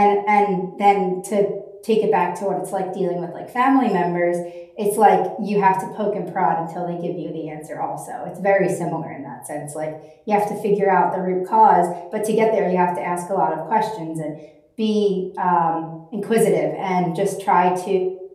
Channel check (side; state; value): both; identical; correlation 1.00